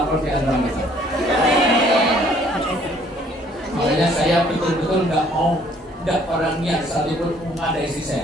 di antara kita. Makanya saya betul-betul nggak mau orang niat satupun mengadai istri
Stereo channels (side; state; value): both; normal; correlation 0.60